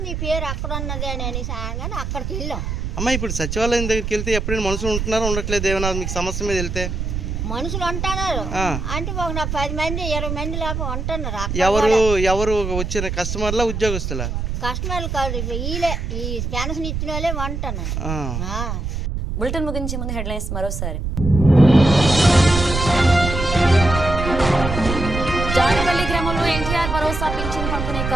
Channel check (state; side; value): noise; right; rumble, 3 dB below the sound